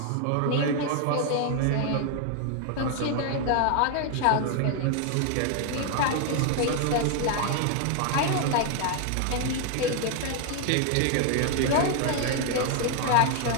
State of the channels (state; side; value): different; both; correlation 0.00